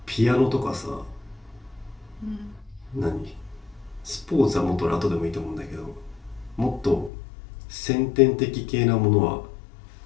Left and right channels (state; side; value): drops out; right; at 7.1 s